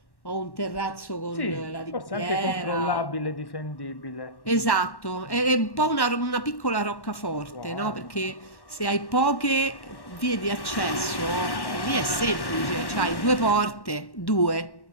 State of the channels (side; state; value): right; late; 1.1 ms